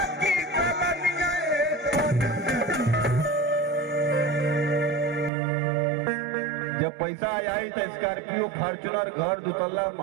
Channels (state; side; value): drops out; left; at 5.3 s